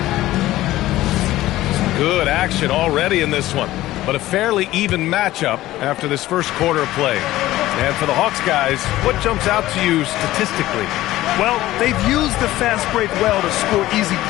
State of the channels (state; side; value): quieter; right; 15.8 dB